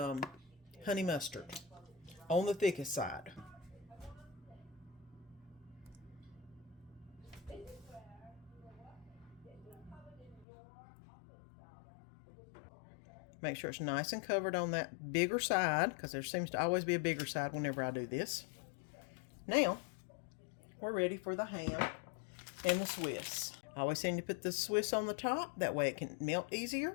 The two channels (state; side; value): drops out; right; at 10.5 s